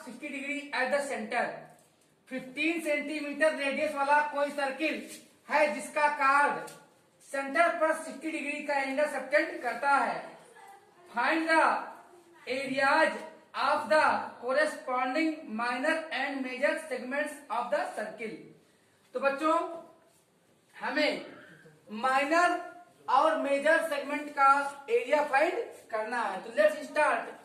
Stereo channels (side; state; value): both; identical; correlation 1.00